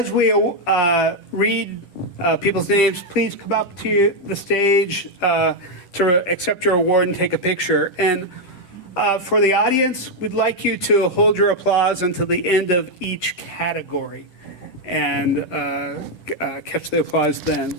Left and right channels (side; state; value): right; late; 10 ms